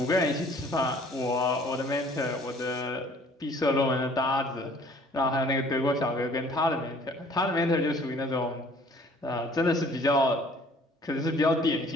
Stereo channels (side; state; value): both; normal; correlation 0.55